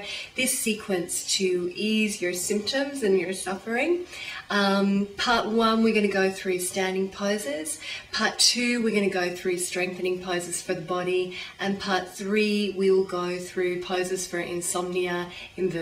this sequence to ease your symptoms and your suffering. Part 1, we're going to go through standing poses. Part 2, we're going to go through strengthening poses for the body. And Part 3, we will go through poses for insomnia,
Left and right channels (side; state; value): both; identical; correlation 1.00